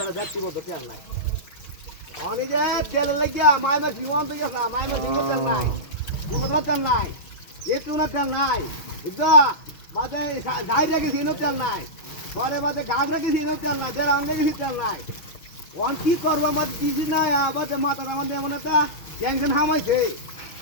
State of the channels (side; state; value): right; late; 6.2 ms